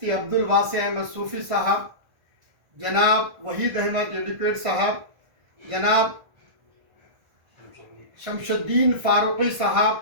عبدالواسع احمد صوفی صاحب، جناب وحید احمد ایڈوکیٹ صاحب، جناب شمش الدین فاروقی صاحب،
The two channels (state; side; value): late; left; 1.5 ms